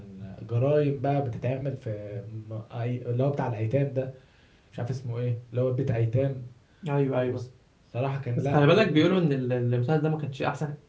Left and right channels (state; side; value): identical; both; correlation 1.00